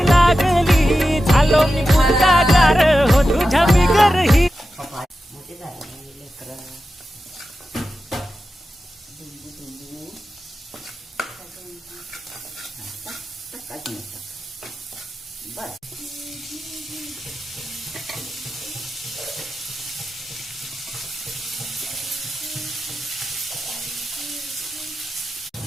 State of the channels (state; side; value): normal; both; correlation 0.92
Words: लागली झालो मी गुंडागार हो तुझ्या बिगर ही